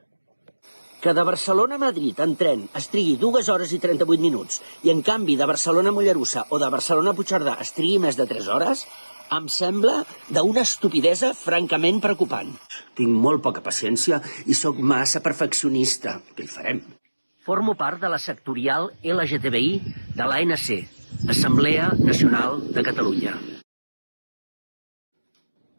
Que de Barcelona a Madrid en tren es trigui 2 hores i 38 minuts i en canvi de Barcelona a Mollerussa o de Barcelona a Puigcerdà es trigui més de 3 hores, em sembla d'una estupidesa francament preocupant. Tinc molt poca paciència i sóc massa perfeccionista. Què hi farem? Formo part de la sectorial LGTBI de l'ANC, Assemblea Nacional de Catalunya.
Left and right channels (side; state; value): both; inverted; correlation -1.00